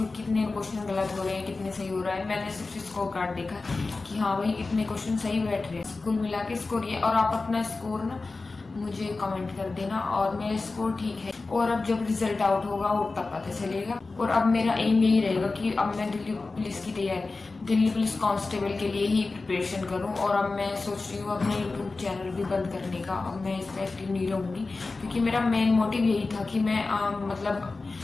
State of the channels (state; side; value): quieter; right; 3.7 dB